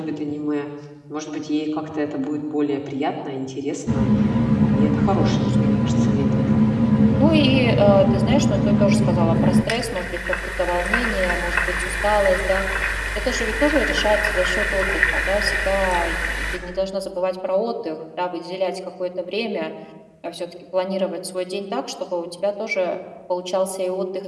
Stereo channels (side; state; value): both; identical; correlation 1.00